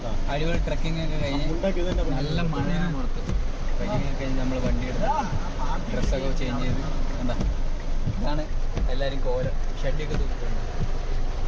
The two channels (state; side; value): identical; both; correlation 1.00